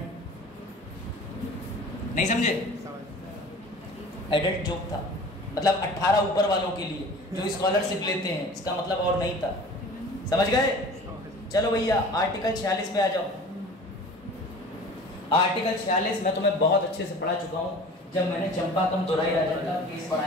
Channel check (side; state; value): both; normal; correlation 0.42